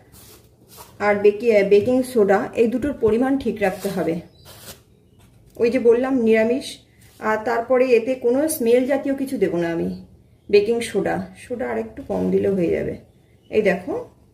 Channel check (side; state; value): both; identical; correlation 1.00